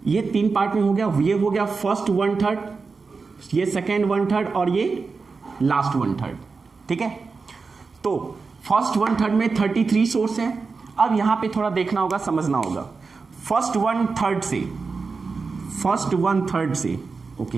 ये 3 पार्ट में हो गया। ये हो गया फर्स्ट 1/3, ये सेकेंड 1/3 और ये लास्ट 1/3, ठीक है। तो फर्स्ट 1/3 में 33 सोर्स है। अब यहां पे थोड़ा देखना होगा, समझना होगा। फर्स्ट 1/3 से ओके,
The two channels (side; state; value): left; quieter; 4.5 dB